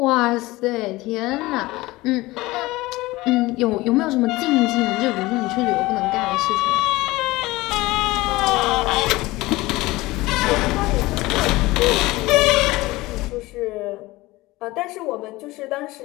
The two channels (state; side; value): quieter; right; 20.0 dB